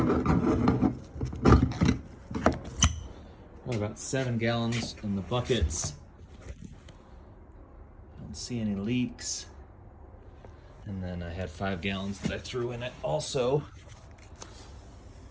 have about 7 gallons in the buckets. Don't see any leaks. And then I had 5 gallons that I threw in it also.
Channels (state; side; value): identical; both; correlation 1.00